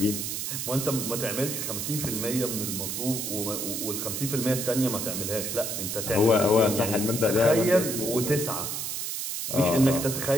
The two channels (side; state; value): right; noise; hiss, 3 dB below the sound